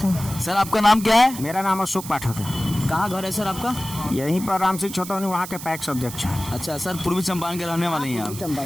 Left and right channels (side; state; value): right; noise; hiss, 12 dB below the sound